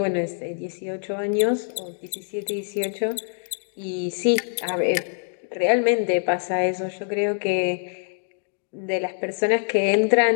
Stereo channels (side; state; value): right; silent; digital silence